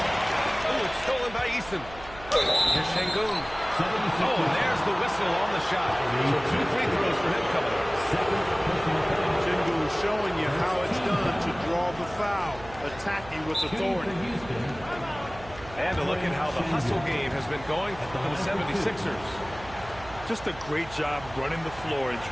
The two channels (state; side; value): noise; right; hum, 17 dB below the sound